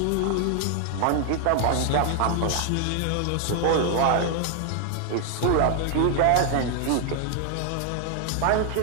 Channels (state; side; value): different; both; correlation 0.00